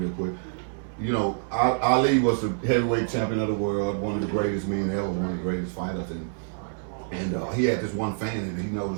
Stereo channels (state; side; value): silent; left; 60 dB below the other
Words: quick. You know, Ali was the heavyweight champion of the world, one of the greatest men ever, one of the greatest fighters, and he had this one fan that he